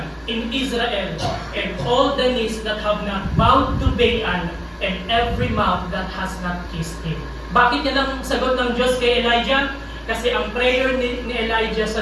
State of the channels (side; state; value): both; identical; correlation 1.00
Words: in Israel, and all the knees that have not bowed to Baal, and every mouth that has not kissed him. Bakit yan ang sagot ng Diyos kay Elijah? Kasi ang prayer ni Elijah